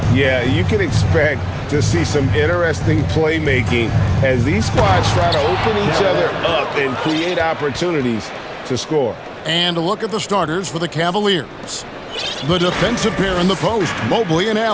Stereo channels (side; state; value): both; identical; correlation 1.00